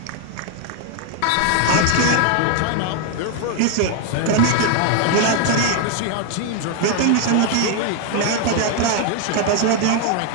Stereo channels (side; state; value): both; different; correlation 0.01